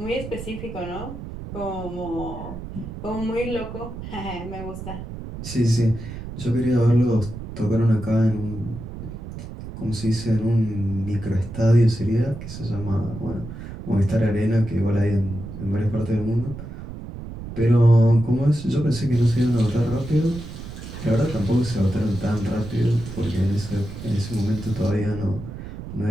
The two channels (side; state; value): right; noise; rumble, 10 dB below the sound